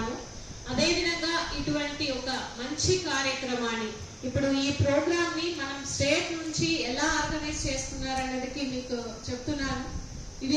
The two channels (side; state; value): both; identical; correlation 1.00